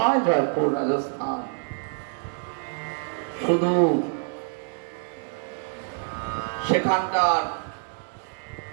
জয়পুর? রাজস্থান। শুধু সেখানকার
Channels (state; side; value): silent; left; 61 dB below the other